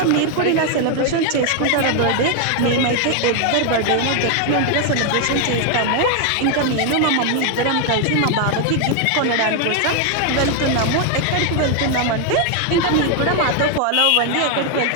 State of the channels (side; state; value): both; different; correlation 0.01